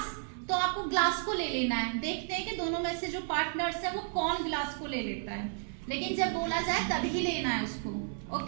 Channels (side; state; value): left; silent; 55 dB below the other